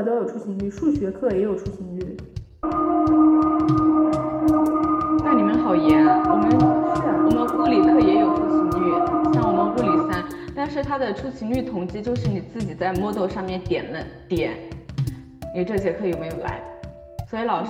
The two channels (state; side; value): identical; both; correlation 1.00